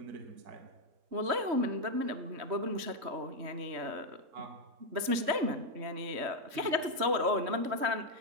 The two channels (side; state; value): left; late; 3.2 ms